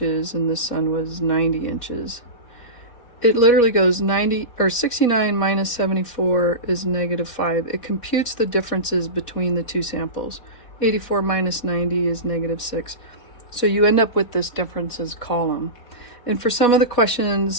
and this son was 90 inches. It literally goes 69 minus 74 is -5. It computes the differences between the 2 samples. 84 minus 90 is -6. So you end up with this differences column. And for some of the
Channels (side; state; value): right; late; 4.1 ms